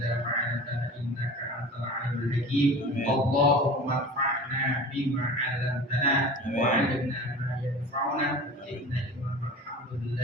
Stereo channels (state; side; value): normal; both; correlation 0.37